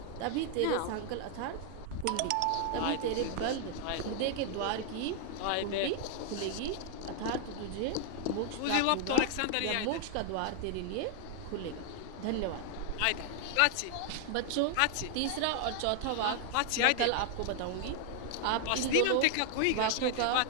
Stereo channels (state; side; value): different; both; correlation 0.00